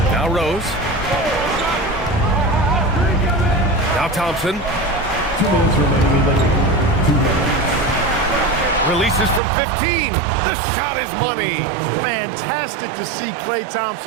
Now Rose. Now Thompson. 2 minutes remaining in the game. 2 minutes. Releases from 15. The shot is money. Fantastic to see Clay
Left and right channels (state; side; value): drops out; left; at 9.4 s